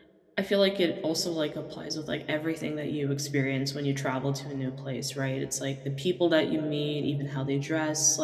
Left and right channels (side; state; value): both; identical; correlation 1.00